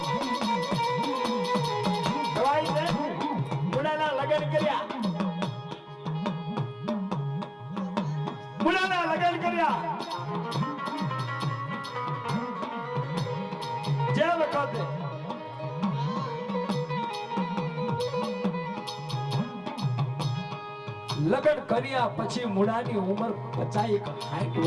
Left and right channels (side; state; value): both; identical; correlation 1.00